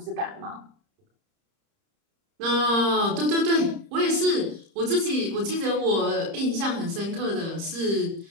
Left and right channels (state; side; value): late; left; 30 ms